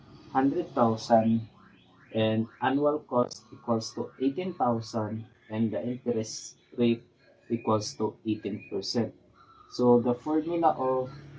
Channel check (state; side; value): identical; both; correlation 1.00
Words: 100,000 and annual cost equals to 18,000 and the interest rate equals to 18%. So the formula of